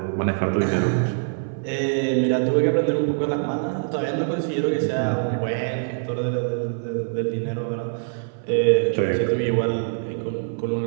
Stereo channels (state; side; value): silent; left; 58 dB below the other